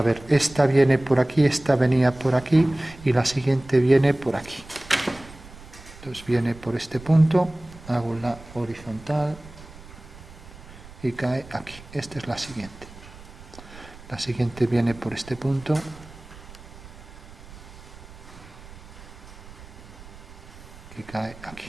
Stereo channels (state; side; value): noise; right; rumble, 18 dB below the sound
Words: ver, esta viene por aquí, esta venía por aquí y la siguiente viene por aquí. Entonces viene por este punto, hago la horizontal y cae aquí. Esta es la siguiente. La siguiente viene por este punto. Y cae